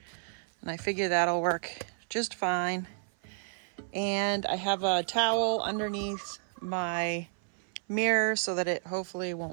And I figure that'll work just fine. And I have a towel underneath my mirror so that it hopefully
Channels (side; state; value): left; silent; 57 dB below the other